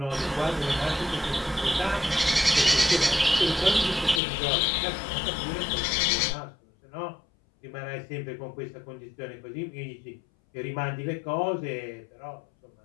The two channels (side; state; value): right; drops out; at 4.2 s